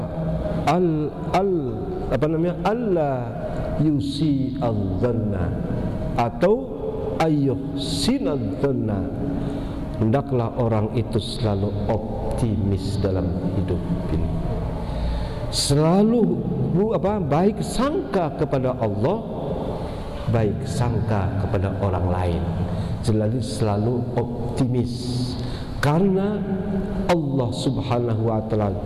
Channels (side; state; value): both; identical; correlation 1.00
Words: Allah yusi al-dhanna atau ayyuhsinadz-dhanna. Hendaklah orang itu selalu optimis dalam hidup ini. Selalu baik sangka kepada Allah, baik sangka kepada orang lain. Selalu optimis. Karena Allah Subhanahu wa taala